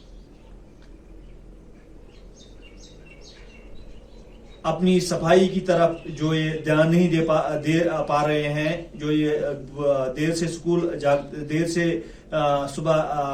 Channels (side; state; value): both; identical; correlation 1.00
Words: अपनी सफाई की तरफ जो ये ध्यान नहीं दे पा रहे हैं, जो ये देर से देर से